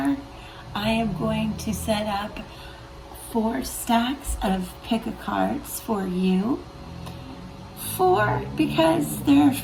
I am going to set up 4 stacks of pick a cards for you. 4 because there are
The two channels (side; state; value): both; identical; correlation 1.00